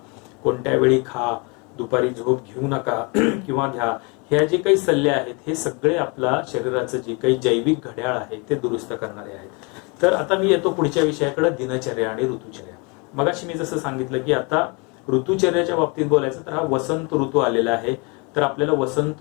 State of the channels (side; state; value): right; quieter; 31.0 dB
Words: कोणत्या वेळी खा, दुपारी झोप घेऊ नका किंवा घ्या, ह्या जे काही सल्ले आहेत हे सगळे आपला शरीराचं जे काही जैविक घड्याळ आहे ते दुरुस्त करणारे आहेत. तर आता मी येतो पुढच्या विषयाकडे, दिनचर्या आणि ऋतुचर्या. मगाशी मी जसं सांगितलं की आता ऋतुचर्याच्या बाबतीत बोलायचं तर हा वसंत ऋतू आलेला आहे. तर आपल्याला वसंत